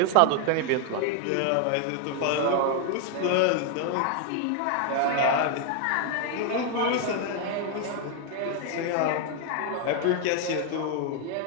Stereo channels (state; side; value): different; both; correlation 0.01